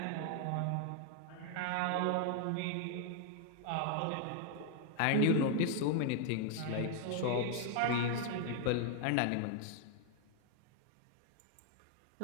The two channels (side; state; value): both; different; correlation 0.00